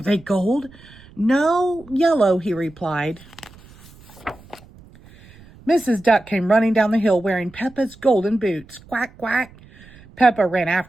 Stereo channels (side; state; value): right; noise; rumble, 23 dB below the sound